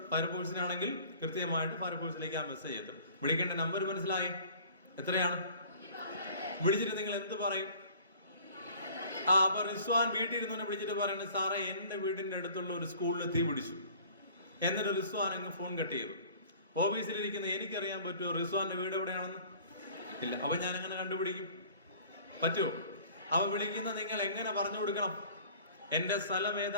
ഫയർഫോഴ്സിനാണെങ്കിൽ കൃത്യമായിട്ട് ഫയർഫോഴ്സിലേക്ക് ആ മെസ്സേജ് എത്തും. വിളിക്കേണ്ട നമ്പർ മനസ്സിലായി? എത്രയാണ്? വിളിച്ചിട്ട് നിങ്ങൾ എന്ത് പറയും? അപ്പൊ റിസ്വാൻ വീട്ടിൽ ഇരുന്നവനെ വിളിച്ചിട്ട് പറയുന്നത്, സാറേ എന്റെ വീടിന്റെ അടുത്തുള്ള ഒരു സ്കൂളിൽ തീ പിടിച്ചു. എന്നിട്ട് റിസ്വാൻ അങ്ങ് ഫോൺ കട്ട് ചെയ്തു. ഓഫീസിലിരിക്കുന്ന എനിക്കറിയാൻ പറ്റുമോ റിസ്വാന്റെ വീട് എവിടെയാണെന്ന്? ഇല്ല. അപ്പൊ ഞാൻ എങ്ങനെ കണ്ടുപിടിക്കും? പറ്റുമോ? അവ വിളിക്കുന്ന നിങ്ങൾ എങ്ങനെ പറഞ്ഞു കൊടുക്കണം? എന്റെ സ്ഥലം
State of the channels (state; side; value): inverted; both; correlation -0.49